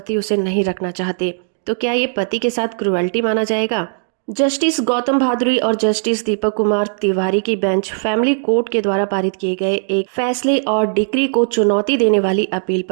उसे नहीं रखना चाहते, तो क्या ये पति के साथ क्रुएल्टी माना जाएगा? जस्टिस गौतम भादुरी और जस्टिस दीपक कुमार तिवारी की बेंच फैमिली कोर्ट के द्वारा पारित किए गए एक फैसले और डिक्री को चुनौती देने वाली अपील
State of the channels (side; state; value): left; silent; digital silence